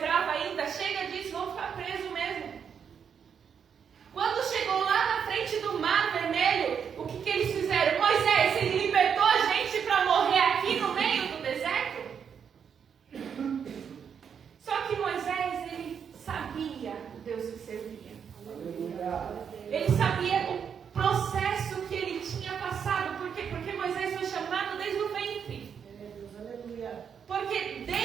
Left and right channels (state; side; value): quieter; left; 7.3 dB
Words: ainda? Chega disso, vão ficar presos mesmo. Quando chegou lá na frente do Mar Vermelho, o que eles fizeram? Moisés, ele libertou a gente para morrer aqui no meio do deserto? Só que Moisés, ele sabia o Deus que servia. Ele sabia o processo que ele tinha passado. Por quê? Porque Moisés foi chamado desde o ventre. Porque